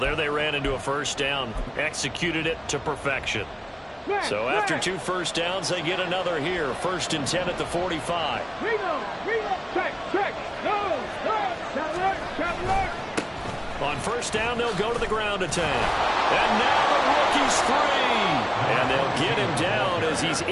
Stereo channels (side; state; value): both; identical; correlation 1.00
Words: they ran into a first down, executed it to perfection. So after 2 first downs, they get another here. 1st and 10 at the 45. On first down, they'll go to the ground attack. And now the rookie's free. And they'll get him down as he's